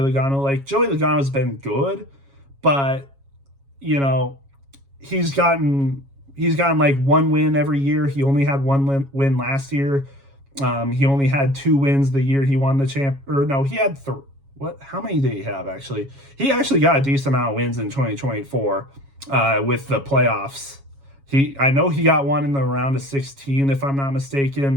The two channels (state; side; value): late; left; 7.3 ms